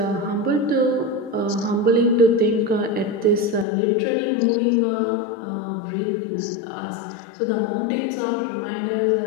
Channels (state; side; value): drops out; right; at 3.7 s